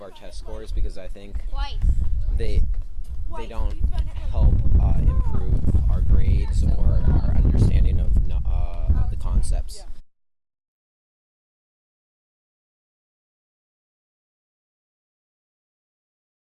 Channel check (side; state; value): both; identical; correlation 1.00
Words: our test scores, because I think they don't help improve our grades or our understanding of the concepts.